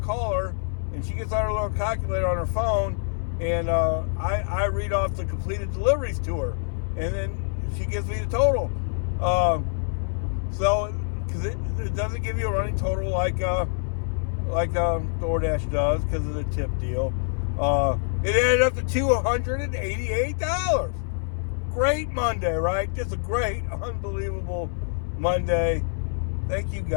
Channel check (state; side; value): silent; right; 60 dB below the other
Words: her, and she gets out her little calculator on her phone, and I read off the completed deliveries to her, and then she gives me the total. So, because it doesn't give you a running total like DoorDash does because of the tip deal. It added up to $288. Great Monday, right? Just a great, unbelievable Monday. Thank you,